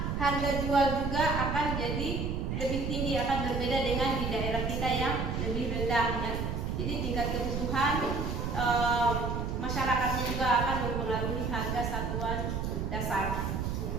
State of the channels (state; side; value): noise; right; rumble, 2 dB below the sound